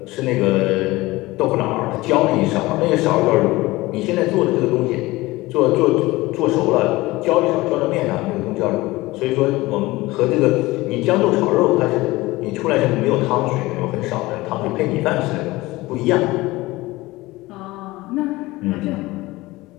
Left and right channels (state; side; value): quieter; right; 19.9 dB